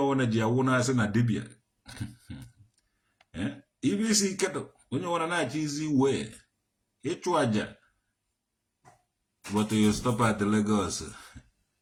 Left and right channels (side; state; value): both; identical; correlation 1.00